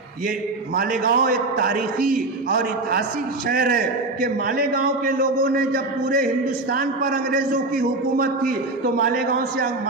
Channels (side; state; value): left; quieter; 3.1 dB